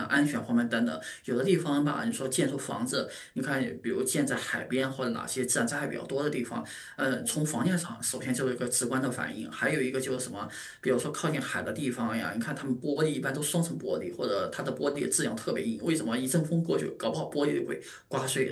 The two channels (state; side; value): identical; both; correlation 1.00